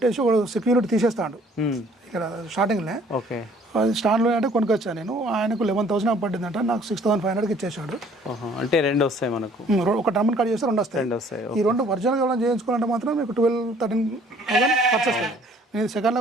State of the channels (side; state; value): both; normal; correlation 0.57